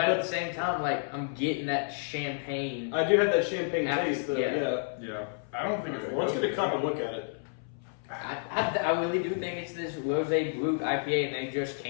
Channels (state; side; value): silent; right; 58 dB below the other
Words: at the same time, I'm getting that champagne. I do have that champagne After- taste, though. yeah. yeah, I don't think it's. Well, let's get a cup and look at it. I really do think it's this rosé Brut IPA, and they just